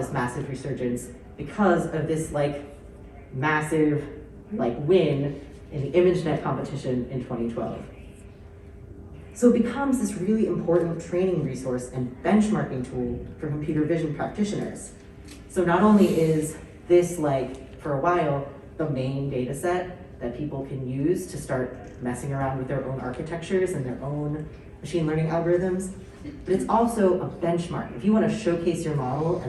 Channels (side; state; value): both; identical; correlation 1.00